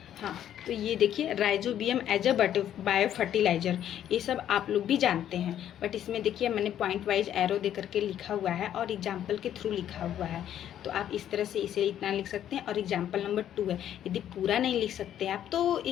हाँ तो ये देखिए rhizobium as a bio fertilizer, ये सब आप लोग भी जानते हैं। बट इसमें देखिए मैंने पॉइंट वाइज एरो दे करके लिखा हुआ है और एग्जाम्पल के थ्रू लिखा हुआ है। तो आप इस तरह से इसे इतना लिख सकते हैं। और एग्जाम्पल नंबर 2 है, यदि पूरा नहीं लिख सकते आप तो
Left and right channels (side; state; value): right; quieter; 10.7 dB